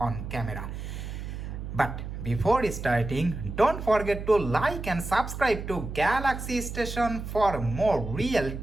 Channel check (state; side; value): noise; right; hum, 7 dB below the sound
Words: camera. But before starting, don't forget to like and subscribe to Galaxy Station for more real